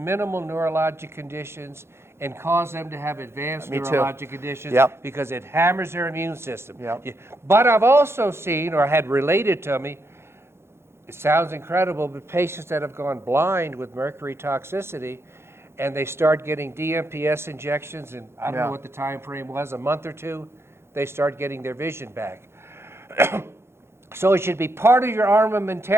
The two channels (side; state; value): left; late; 0.12 ms